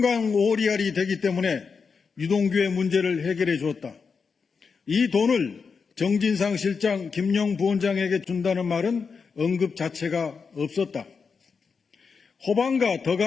오리알이 되기 때문에 유동규의 문제를 해결해 주었다. 이 돈을 정진상 실장, 김용 부원장에게 준다는 말은 언급 자체가 없었다. 호반과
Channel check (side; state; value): right; quieter; 5.4 dB